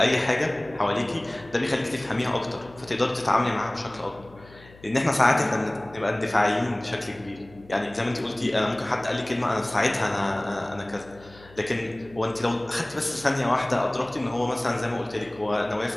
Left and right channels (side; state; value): left; noise; hum, 23 dB below the sound